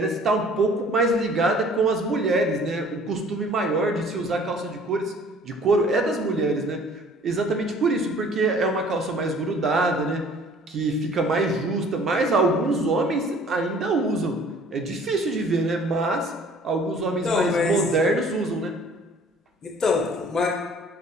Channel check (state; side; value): normal; both; correlation 0.52